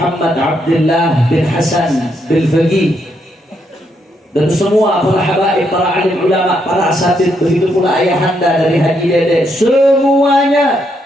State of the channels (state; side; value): normal; both; correlation 0.77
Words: Abdullah bin Hasan bin Faqih, dan semua para habaib, para alim ulama, para asatid, begitu pula ayahanda dari Haji Dede, semuanya